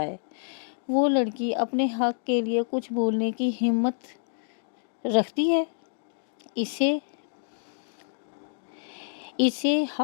وہ لڑکی اپنے حق کے لیے کچھ بولنے کی ہمت رکھتی ہے؟ اسے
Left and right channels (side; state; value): right; silent; digital silence